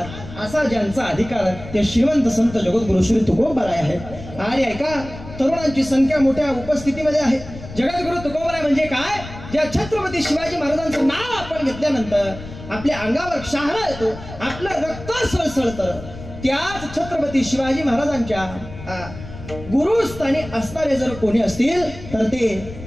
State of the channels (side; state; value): left; noise; rumble, 13 dB below the sound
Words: असा ज्यांचा अधिकार ते श्रीमंत संत जगद्गुरु श्री तुकोबराय आहे. आणि ऐका, तरुणांची संख्या मोठ्या उपस्थितीमध्ये आहे. जगद्गुरु तुकोबराय म्हणजे काय? ज्या छत्रपती शिवाजी महाराजांचं नाव आपण घेतल्यानंतर आपल्या अंगावर शहारा येतो, आपलं रक्त सळसळतं. त्याच छत्रपती शिवाजी महाराजांच्या गुरुस्थानी असणारे जर कोणी असतील तर ते